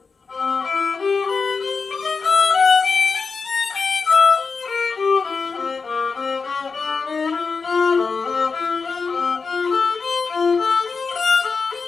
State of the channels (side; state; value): right; quieter; 4.8 dB